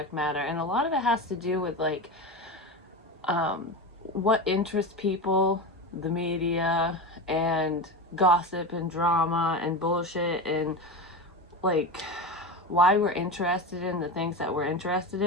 matter, and a lot of it has to do with what interests people, the media, and gossip and drama and bullshit, and why we're interested in the things that we're interested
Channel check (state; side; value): normal; both; correlation 0.23